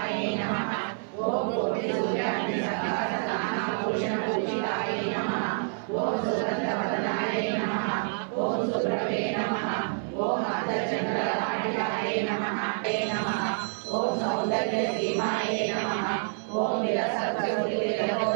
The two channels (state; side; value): silent; left; 59 dB below the other